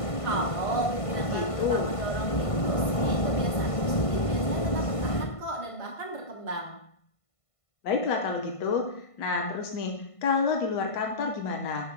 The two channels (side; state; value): right; late; 1.5 ms